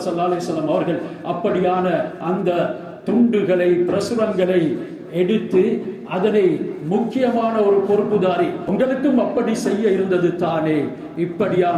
ஸல்லல்லாஹு அலைஹி வஸல்லம் அவர்கள். அப்படியான அந்த துண்டுகளை பிரசுரங்களை எடுத்து அதனை முக்கியமான ஒரு பொறுப்புதாரி. உங்களுக்கும் அப்படி செய்ய இருந்தது தானே.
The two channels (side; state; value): both; identical; correlation 1.00